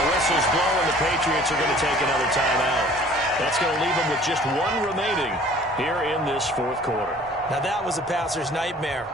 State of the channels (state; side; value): normal; both; correlation 0.51